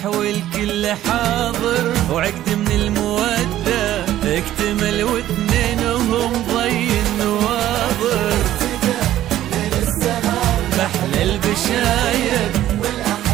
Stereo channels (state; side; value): quieter; left; 13.1 dB